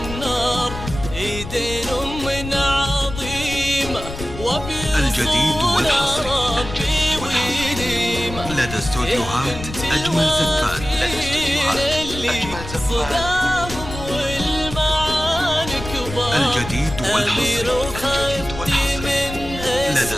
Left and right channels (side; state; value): left; noise; rumble, 10 dB below the sound